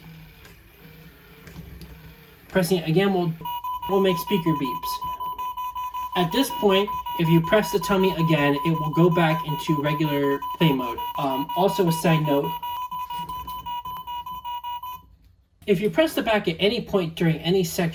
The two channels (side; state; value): both; identical; correlation 1.00